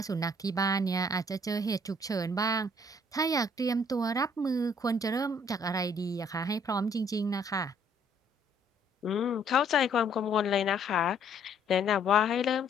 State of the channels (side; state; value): both; normal; correlation 0.63